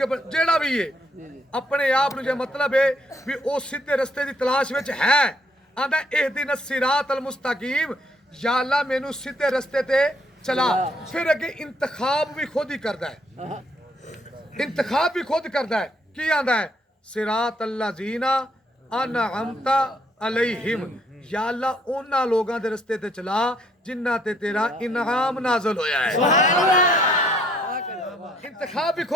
जेड़ा भी है अपने आप नु जे मतलब है भी ओ सीधे रस्ते दी तलाश विच है। आंदा इहदिन सिरात अल मुस्तकीम, या अल्लाह मैनू सीधे रस्ते ते चला। फिर अगे इंतखाब भी खुद ही करदा है, इंतखाब भी खुद करदा है। की आंदा है? सिरात अल्लाजीना अनअमता अलैहिम, या अल्लाह उन्हां लोगां दे रस्ते ते चला जिन्हां ते तेरा इनाम नाज़िल होया है। इंतखाब भी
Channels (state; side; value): normal; both; correlation 0.68